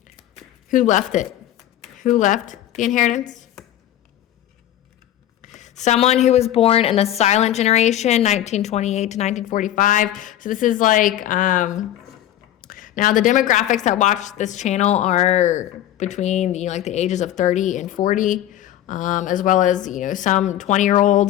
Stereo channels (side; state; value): right; quieter; 12.5 dB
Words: Who left it? Who left the inheritance? Someone who was born in the silent generation, 1928 to 1945. So this is like, now the demographics that watch this channel are between, like the ages of 30 and 40, as well as, some 20-year-olds